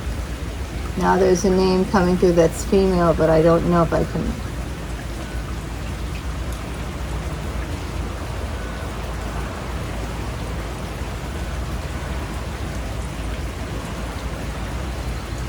Now there's a name coming through that's female, but I don't know if I can.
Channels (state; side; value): identical; both; correlation 1.00